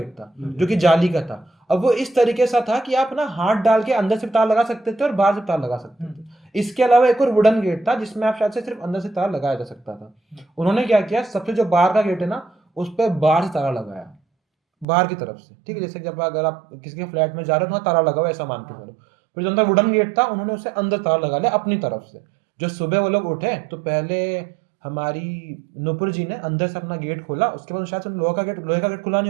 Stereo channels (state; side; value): drops out; left; at 14.9 s